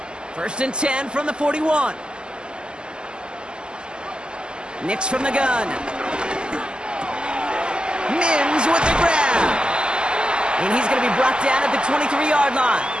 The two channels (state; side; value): late; left; 0.048 ms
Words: 1st and 10 from the 41. Nix from the gun. Mims with the grab. And he's going to be brought down at the 23-yard line.